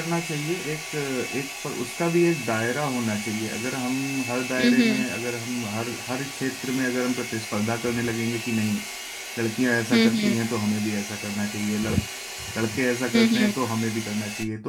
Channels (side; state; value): both; identical; correlation 1.00